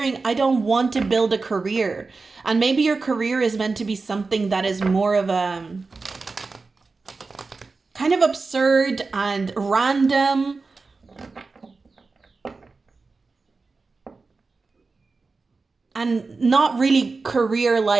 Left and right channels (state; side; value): quieter; left; 4.1 dB